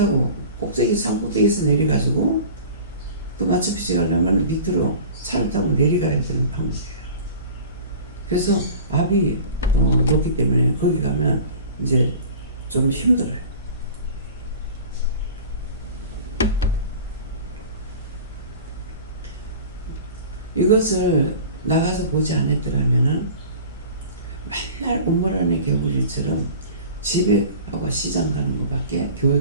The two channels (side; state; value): both; inverted; correlation -0.40